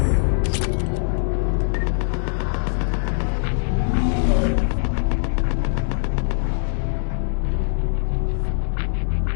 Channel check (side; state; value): right; silent; digital silence